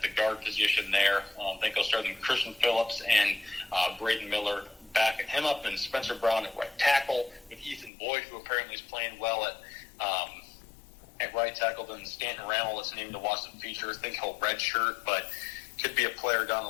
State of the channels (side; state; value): right; drops out; at 7.9 s